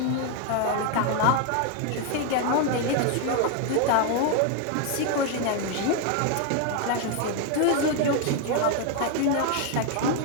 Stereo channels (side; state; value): both; different; correlation 0.01